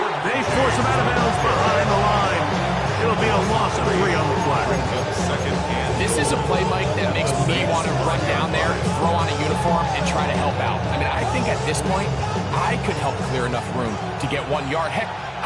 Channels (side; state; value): both; identical; correlation 1.00